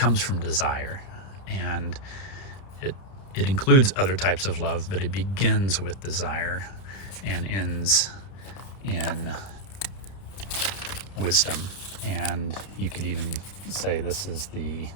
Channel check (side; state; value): right; late; 31 ms